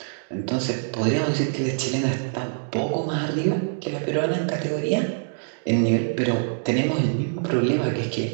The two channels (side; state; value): left; silent; digital silence